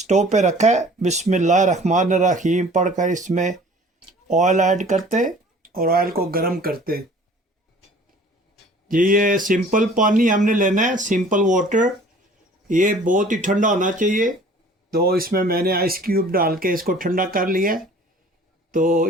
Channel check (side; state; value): both; normal; correlation 0.49